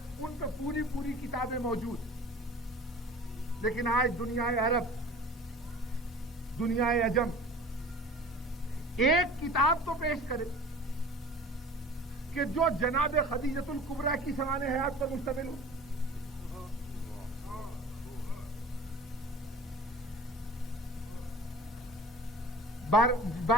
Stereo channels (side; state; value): both; normal; correlation 0.42